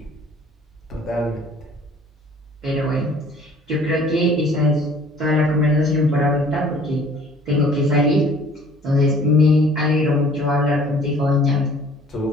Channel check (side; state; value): both; normal; correlation 0.53